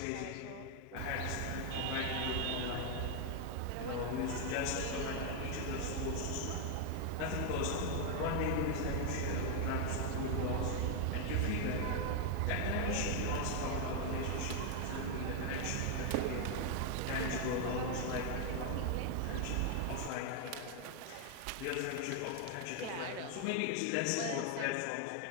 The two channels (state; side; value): different; both; correlation 0.00